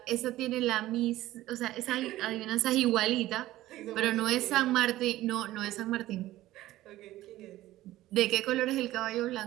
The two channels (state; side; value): quieter; left; 15.6 dB